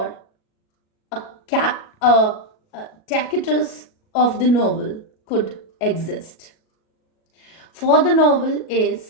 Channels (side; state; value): right; late; 37 ms